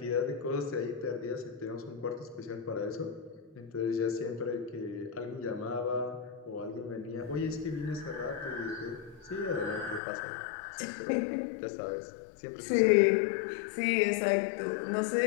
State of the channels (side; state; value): right; drops out; at 10.0 s